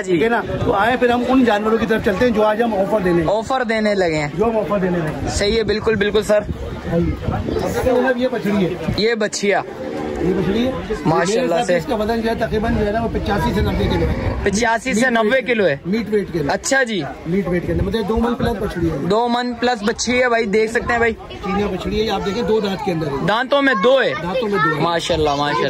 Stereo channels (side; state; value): both; identical; correlation 1.00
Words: जी, ठीक है ना। तो आए फिर हम उन जानवरों की तरफ चलते हैं जो आज हम ऑफर देने लगे हैं। जो हम ऑफर देने लगे। सही है, बिल्कुल बिल्कुल सर। ये बछड़ी है, ये बछिया, ये मछली है माशाल्लाह से। इसका वजन जो है तकरीबन जो है ना वो 85 से 90 किलो है। 85 से 90 किलो है मीट वेट के अंदर। अच्छा जी, मीट वेट के अंदर मतलब 2 मन प्लस बछड़ी है। 2 मन प्लस बच्ची है भाई, देख सकते हैं भाई। चीनिया बछड़ी है, आप देखिए 2 दांत के अंदर है। दांतों में 2 है। दांतों में 2 है। माशाल्लाह